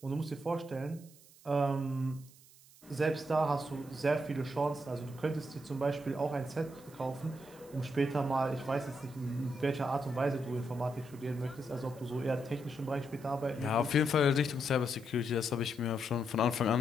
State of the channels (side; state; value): right; noise; hiss, 24 dB below the sound